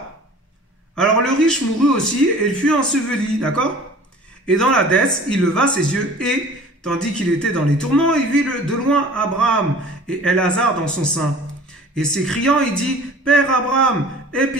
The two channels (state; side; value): normal; both; correlation 0.46